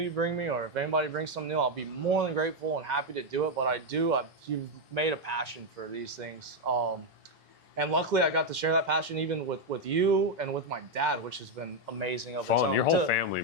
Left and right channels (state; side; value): normal; both; correlation 0.03